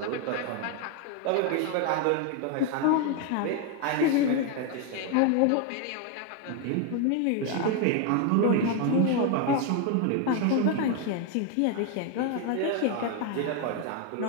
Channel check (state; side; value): different; both; correlation 0.01